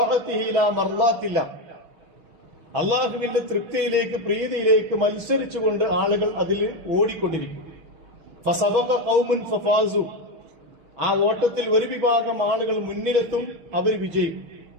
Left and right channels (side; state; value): left; late; 6.1 ms